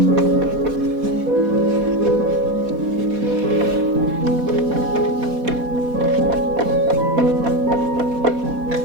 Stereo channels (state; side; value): late; left; 4.1 ms